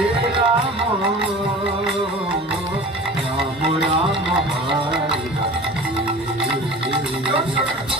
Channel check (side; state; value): both; normal; correlation 0.40